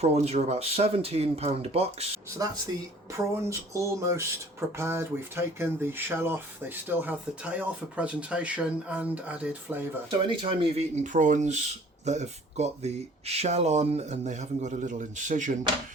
are about £17 a box. So that's the prawns almost prepared. We've taken the shell off. They still have the tail for presentation and added flavour. So anytime you've eaten prawns that have got the shell on and they haven't got a little incision,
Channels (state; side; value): normal; both; correlation 0.53